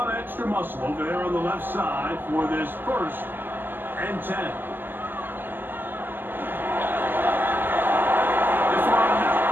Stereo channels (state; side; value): late; left; 0.092 ms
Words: of extra muscle over there on the left side for this 1st and 10. This one not